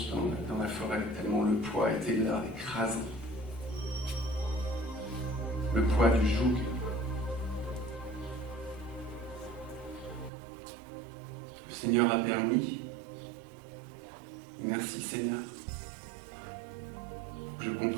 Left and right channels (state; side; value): drops out; left; at 10.3 s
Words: dans la forêt, tellement le poids était là, écrasant. Le poids du joug. Le Seigneur a permis. Merci Seigneur, pour que je